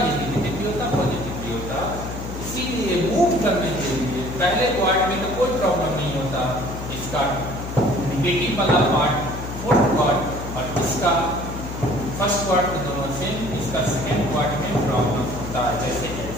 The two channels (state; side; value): noise; left; hum, 8 dB below the sound